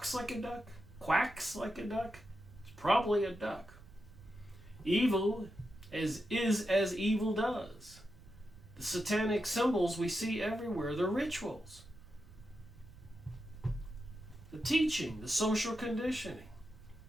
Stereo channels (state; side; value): noise; right; rumble, 20 dB below the sound